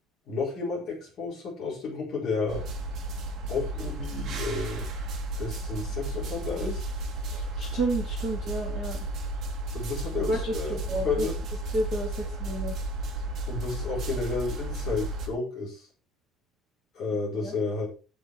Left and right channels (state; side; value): normal; both; correlation 0.46